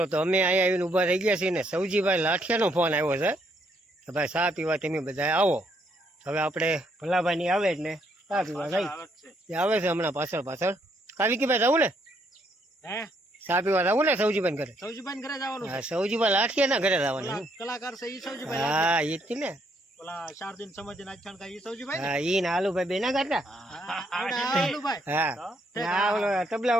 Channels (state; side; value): normal; both; correlation 0.72